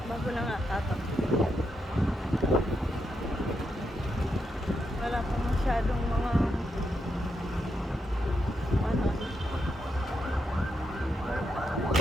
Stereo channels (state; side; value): normal; both; correlation 0.82